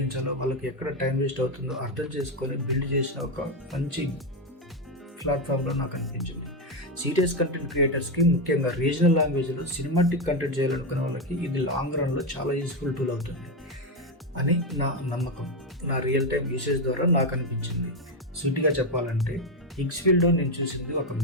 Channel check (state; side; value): normal; both; correlation 0.08